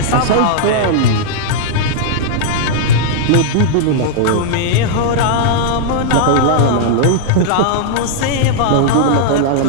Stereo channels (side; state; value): both; different; correlation -0.01